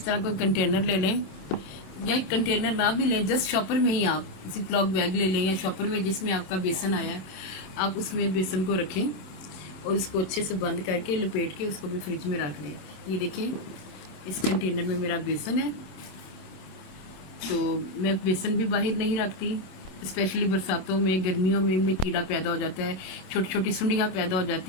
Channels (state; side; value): late; right; 26 ms